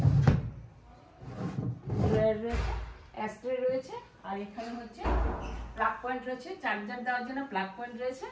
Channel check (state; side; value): identical; both; correlation 1.00